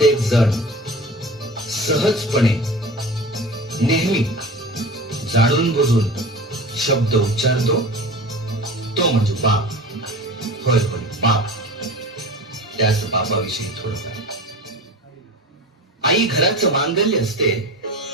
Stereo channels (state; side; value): normal; both; correlation 0.35